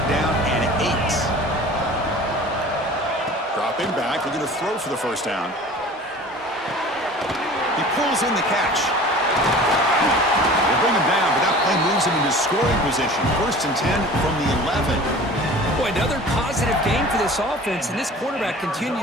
down and 8. Dropping back, looking to throw for the first down. He pulls in the catch. They bring him down, but that play moves him into scoring position. 1st and 10 from the 11. Boy, another positive game for this offense, and this quarterback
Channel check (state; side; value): normal; both; correlation 0.42